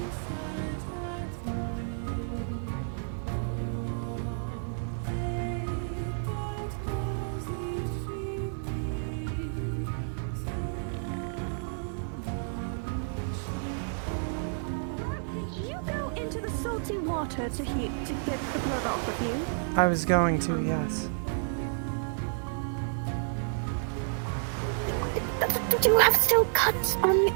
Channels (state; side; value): silent; left; 57 dB below the other